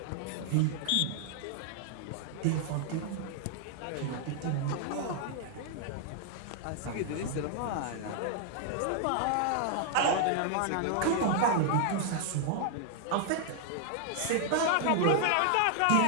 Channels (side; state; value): both; different; correlation 0.00